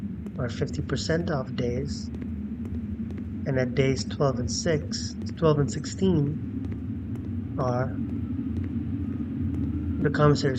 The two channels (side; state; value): both; identical; correlation 1.00